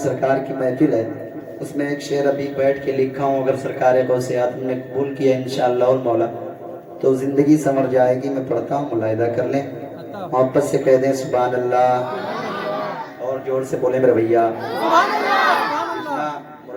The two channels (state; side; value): identical; both; correlation 1.00